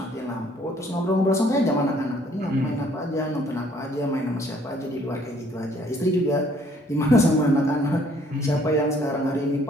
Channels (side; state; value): both; normal; correlation 0.61